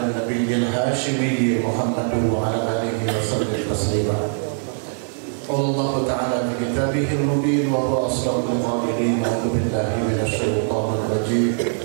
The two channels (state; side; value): silent; left; digital silence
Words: النبي الهاشمي محمد وعلى آله وسلم تسليما. قال الله تعالى في كتابه المبين وهو أصدق القائلين: أعوذ بالله من الشيطان الرجيم.